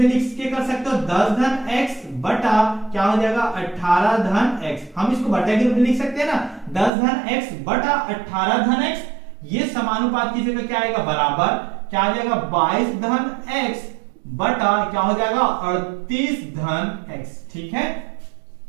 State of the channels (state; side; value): drops out; left; at 6.9 s